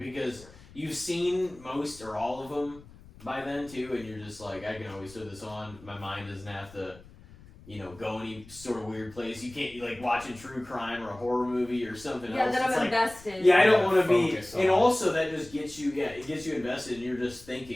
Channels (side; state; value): left; noise; rumble, 21 dB below the sound